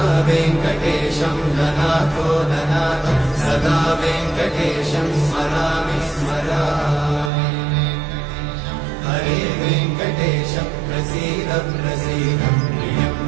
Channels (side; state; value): left; drops out; at 7.3 s